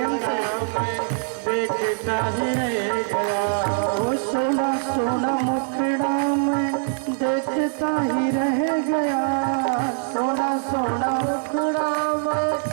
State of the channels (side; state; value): left; silent; digital silence